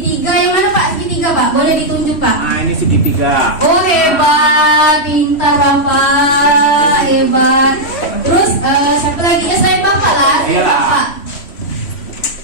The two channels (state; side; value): late; right; 3.1 ms